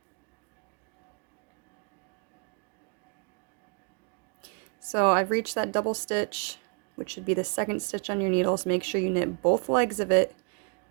So I've reached that double stitch, which should be the second stitch on your needles. Make sure you knit both legs of it,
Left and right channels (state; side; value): quieter; left; 38.8 dB